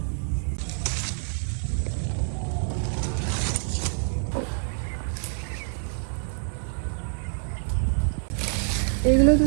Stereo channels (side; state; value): left; silent; 60 dB below the other